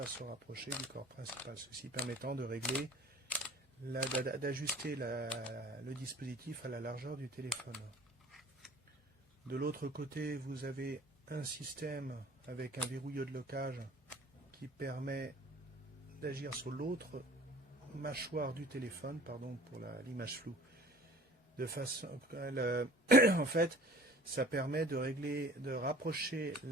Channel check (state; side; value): normal; both; correlation 0.46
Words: se rapprocher du corps principal, ceci permettant de régler, d'ajuster le dispositif à la largeur du téléphone. De l'autre côté, vous avez un système avec un verrouilleur de locage qui permet d'agir sur l'autre mâchoire du téléphone, pardon pour l'image floue. En fait, ça permet de régler, de rapprocher